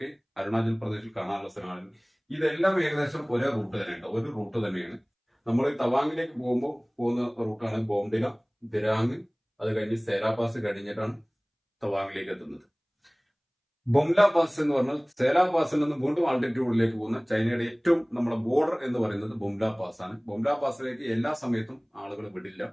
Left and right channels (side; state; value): both; identical; correlation 1.00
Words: അരുണാചൽ പ്രദേശിൽ കാണാനുള്ള സ്ഥലമാണ്. ഇതെല്ലാം ഏകദേശം ഒരേ റൂട്ട് തന്നെയുണ്ട്, ഒരു റൂട്ട് തന്നെയാണ്. നമ്മൾ തവാങ്ങിലേക്ക് പോകുന്ന റൂട്ടാണ് ബോംഡില, ദിരാങ്, അത് കഴിഞ്ഞ് സേരാ പാസ് കഴിഞ്ഞിട്ടാണ് തവാങ്ങിലേക്ക് എത്തുന്നത്. ബൊംല പാസ് എന്ന് പറഞ്ഞാൽ സേരാ പാസിൽ നിന്ന് വീണ്ടും ആൾട്ടിറ്റ്യൂഡിലേക്ക് പോകുന്ന ചൈനയുടെ ഏറ്റവും നമ്മുടെ ബോർഡർ എന്ന് പറയുന്നത് ബൊംല പാസ് ആണ്. ബൊംല പാസിലേക്ക് എല്ലാ സമയത്തും ആളുകൾ വിടില്ല.